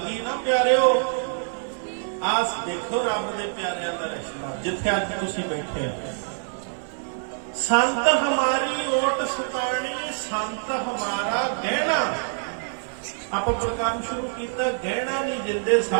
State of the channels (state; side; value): silent; left; 59 dB below the other